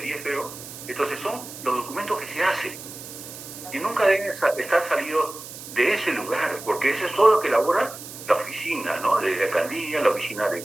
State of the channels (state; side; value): noise; right; hiss, 13 dB below the sound